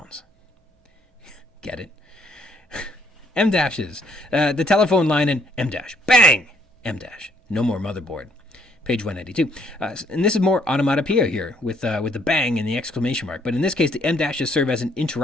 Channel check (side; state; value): both; normal; correlation 0.67